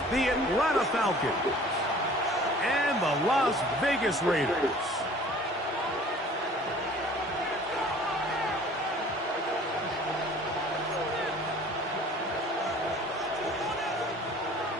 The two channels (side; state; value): both; normal; correlation 0.49